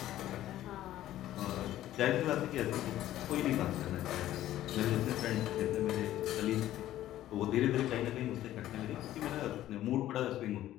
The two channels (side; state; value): right; quieter; 13.5 dB